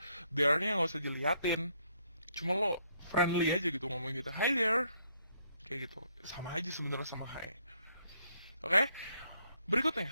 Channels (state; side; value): inverted; both; correlation -0.71